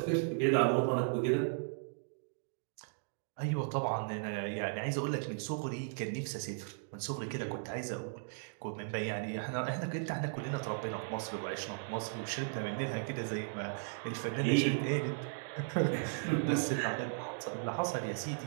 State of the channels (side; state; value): left; silent; digital silence